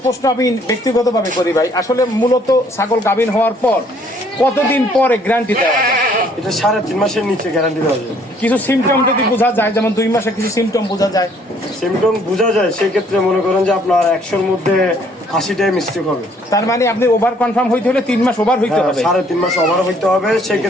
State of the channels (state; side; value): normal; both; correlation 0.63